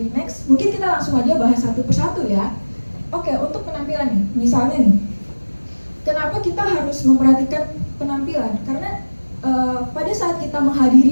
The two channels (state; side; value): inverted; both; correlation -1.00